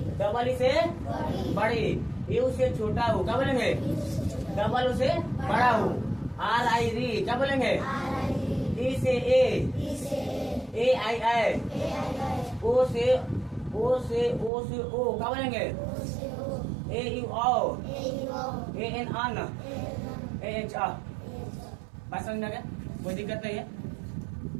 डबल ई से बड़ी, यू से छोटा हो, क्या बोलेंगे? डबल से बड़ा हो, RI री, क्या बोलेंगे? ई से ए आई ओ से ओ, क्या बोलेंगे? AU AN AN AH बात समझ में आ गया? कोई दिक्कत नहीं है।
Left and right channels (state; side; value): drops out; left; at 14.5 s